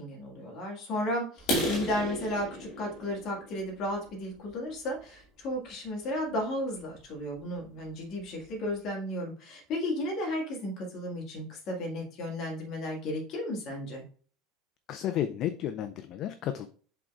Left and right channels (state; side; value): normal; both; correlation 0.36